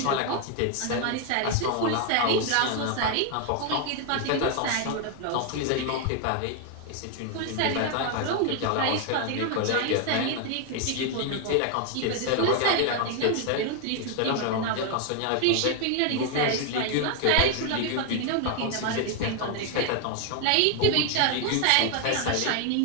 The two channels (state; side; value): different; both; correlation 0.01